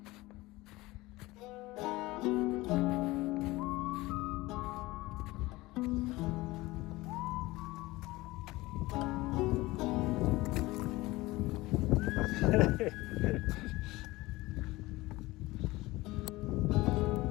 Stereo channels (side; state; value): right; quieter; 20.1 dB